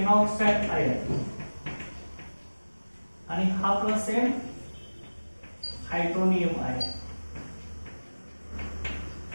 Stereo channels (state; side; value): inverted; both; correlation -1.00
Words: आयन आणि हा plus same hydronium ion.